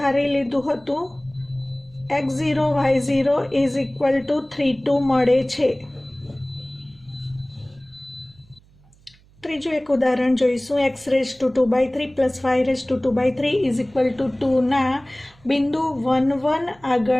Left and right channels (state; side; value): noise; right; hum, 29 dB below the sound